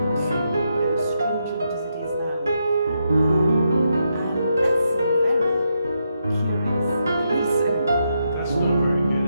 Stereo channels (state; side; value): inverted; both; correlation -0.82